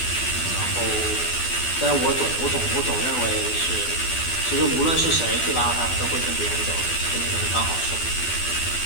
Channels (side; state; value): right; late; 12 ms